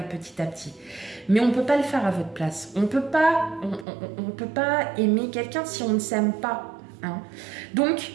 petit à petit. Mais on ne peut pas le faire à votre place. On ne peut pas aimer quelqu'un si on ne s'aime pas. Hein. Donc,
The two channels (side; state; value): left; drops out; at 3.9 s